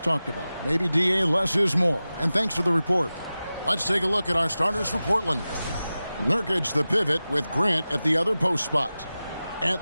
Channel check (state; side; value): inverted; both; correlation -0.95